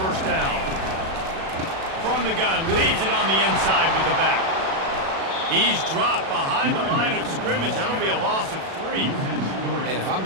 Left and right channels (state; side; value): late; left; 37 ms